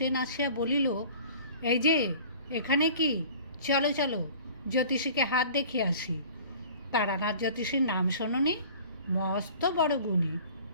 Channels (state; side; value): inverted; both; correlation -0.45